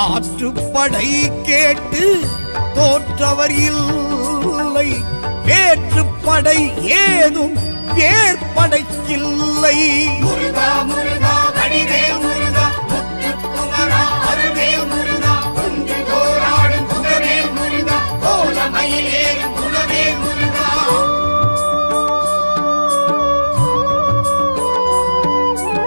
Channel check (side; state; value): both; inverted; correlation -1.00